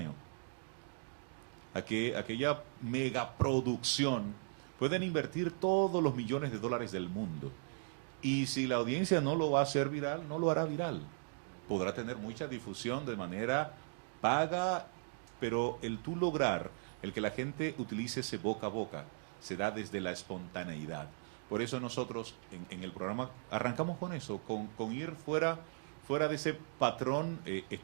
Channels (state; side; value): silent; left; digital silence